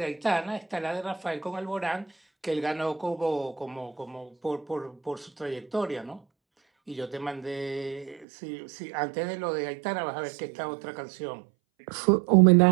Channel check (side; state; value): left; drops out; at 8.2 s